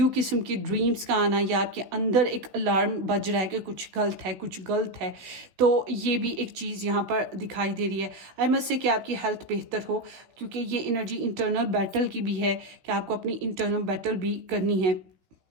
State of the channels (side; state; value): left; late; 16 ms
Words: किस्म के ड्रीम्स का आना, या आपके अंदर एक अलार्म बज रहा है कि कुछ गलत है, कुछ गलत है, तो ये भी एक चीज़ यहाँ पर दिखाई दे रही है। आई मस्ट से कि आपकी हेल्थ बेहतर हो, क्योंकि ये एनर्जी इंटरनल बैटल की भी है कि आपको अपनी इंटरनल बैटल भी करनी है।